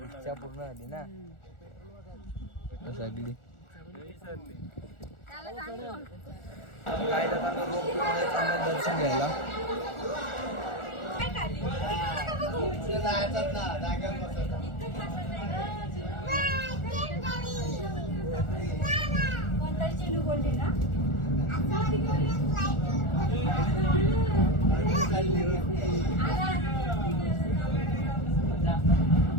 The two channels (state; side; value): late; right; 1.4 ms